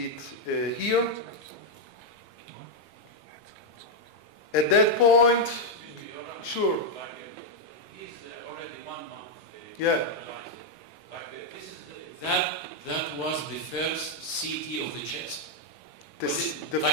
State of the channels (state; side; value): normal; both; correlation 0.00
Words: it here. At that point, sure. He's already 1 month. Yeah. That was the first CT of the chest? The